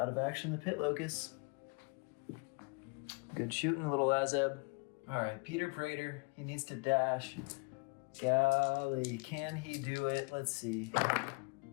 of action the pit locust. Good shooting, little Azeb. All right, Peter Praetor, he needs to dash. Golly, can he do it? Let's see.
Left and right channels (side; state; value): right; quieter; 33.1 dB